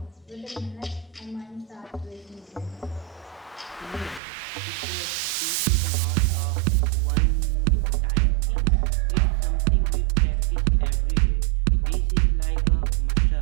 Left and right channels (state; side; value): drops out; left; at 4.2 s